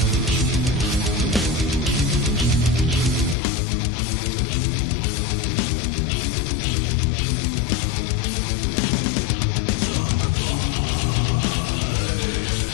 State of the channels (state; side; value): drops out; right; at 3.4 s